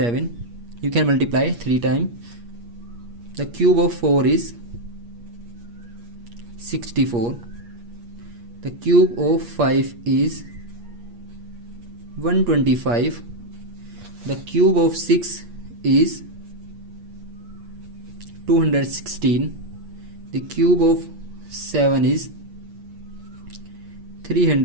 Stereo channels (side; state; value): left; late; 8.5 ms